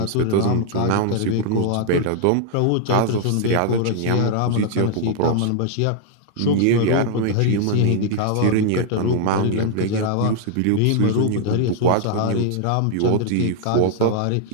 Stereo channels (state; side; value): different; both; correlation -0.01